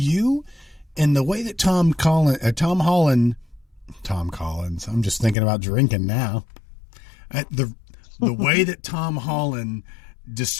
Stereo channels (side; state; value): right; drops out; at 5.4 s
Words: And the way that Tom Collins, I'm just thinking about drinking now. The way that Tom Holland